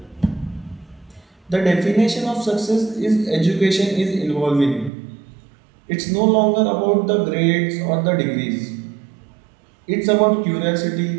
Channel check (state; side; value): drops out; left; at 4.9 s